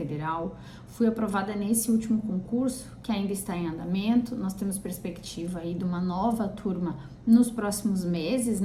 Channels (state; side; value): identical; both; correlation 1.00